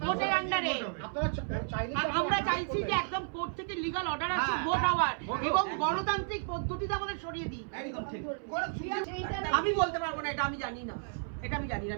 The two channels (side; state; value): left; silent; 56 dB below the other